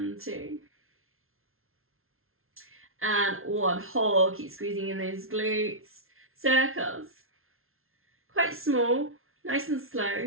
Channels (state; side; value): late; left; 0.61 ms